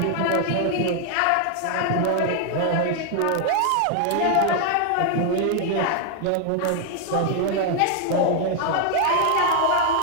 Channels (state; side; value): different; both; correlation 0.00